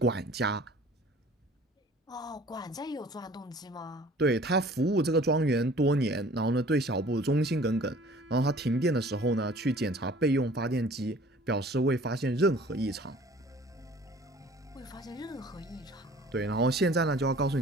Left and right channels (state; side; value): normal; both; correlation 0.49